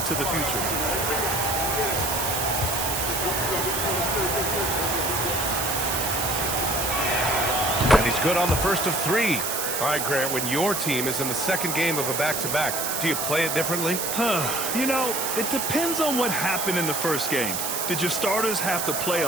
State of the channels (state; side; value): noise; right; hiss, 1 dB below the sound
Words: the future. And he's good on the first of three. All right, Grant, when your team is in the second game of a back-to-back, do you play it differently? You know, it depends on what happened in the first game. Did your starters have to play